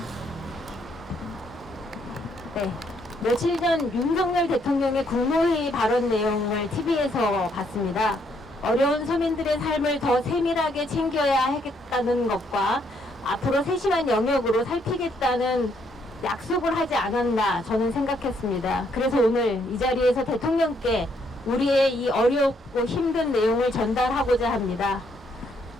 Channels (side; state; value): both; normal; correlation 0.72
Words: 네, 며칠 전 윤석열 대통령의 국무회의 발언 내용을 TV에서 봤습니다. 어려운 서민들의 삶을 더 세밀하게 챙겨야 하겠다는 것과 앞으로 세심한 영역으로 살피겠다는 약속을 하지 않았나 저는 생각했습니다. 그래서 오늘 이 자리에서 대통령께 우리의 이 어렵고 힘든 내용을 전달하고자 합니다.